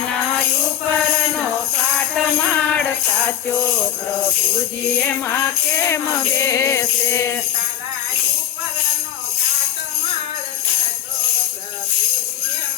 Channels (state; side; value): quieter; right; 10.2 dB